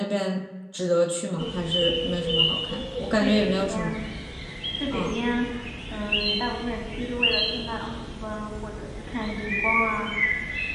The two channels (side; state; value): both; identical; correlation 1.00